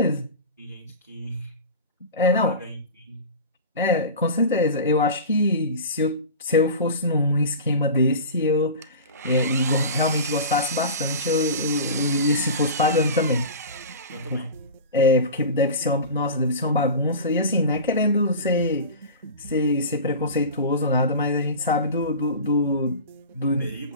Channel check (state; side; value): inverted; both; correlation -0.31